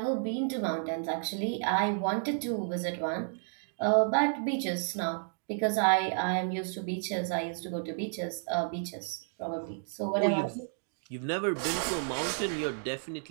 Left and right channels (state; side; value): silent; left; digital silence